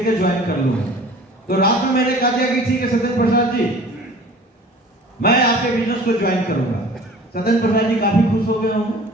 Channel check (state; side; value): normal; both; correlation 0.45